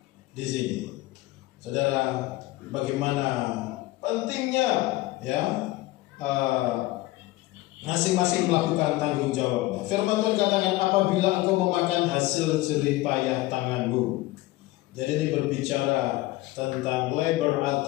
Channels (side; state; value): right; quieter; 18.5 dB